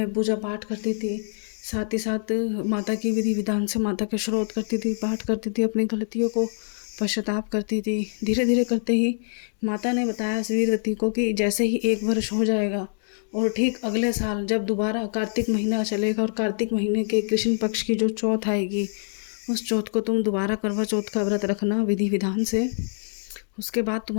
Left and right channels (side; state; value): right; silent; digital silence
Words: पूजा पाठ करती थी, साथ ही साथ माता की विधि विधान से माता के श्रोत करती थी, पाठ करती थी, अपनी गलतियों को पश्चाताप करती थी। धीरे धीरे करते ही माता ने बताया वीरवती को कि जैसे ही 1 वर्ष हो जाएगा और ठीक अगले साल जब दोबारा कार्तिक महीना चलेगा और कार्तिक महीने के कृष्ण पक्ष की जो चौथ आएगी, उस चौथ को तुम दोबारा करवा चौथ का व्रत रखना विधि विधान से। उसके बाद